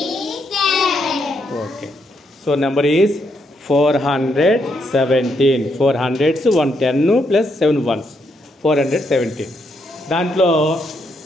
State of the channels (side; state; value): both; normal; correlation 0.77